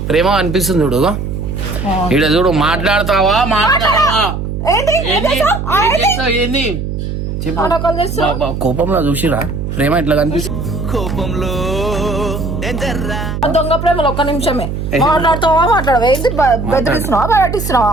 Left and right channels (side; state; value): right; noise; hum, 4 dB below the sound